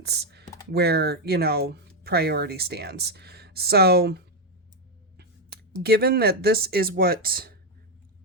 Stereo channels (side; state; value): both; normal; correlation 0.04